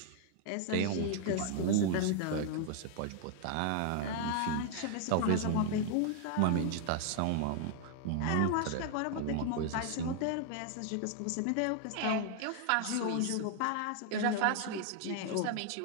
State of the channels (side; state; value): both; different; correlation 0.00